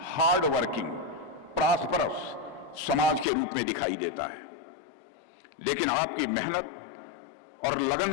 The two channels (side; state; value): right; drops out; at 3.2 s